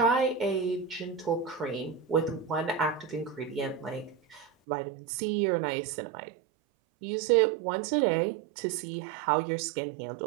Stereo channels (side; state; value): left; drops out; at 4.5 s